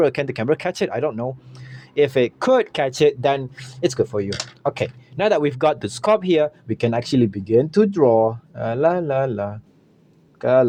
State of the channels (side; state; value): both; identical; correlation 1.00